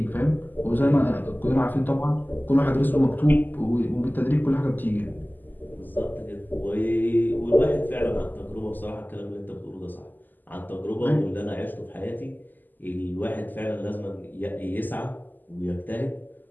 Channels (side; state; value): right; late; 0.087 ms